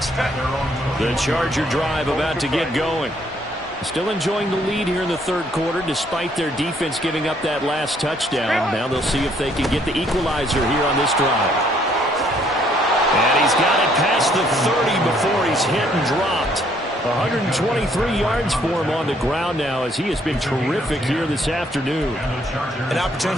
The Charger drive about to get going. Still enjoying the lead here in the third quarter, despite their defense giving up that last touchdown. Now they'll see if they can get the equalizer here on this drive. And he's got it past the 30 before he's hit and dropped. 123 yards for him on the ground now, as he has been terrific here this afternoon. An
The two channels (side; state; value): both; normal; correlation 0.66